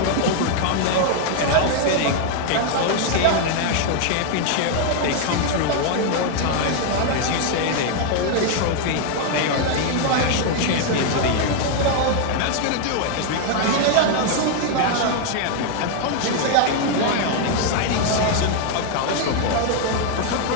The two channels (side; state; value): both; different; correlation 0.00